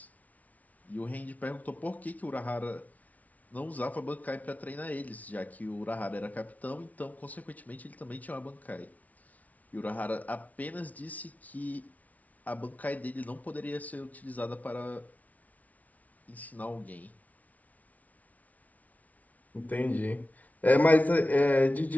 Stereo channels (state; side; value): late; right; 0.072 ms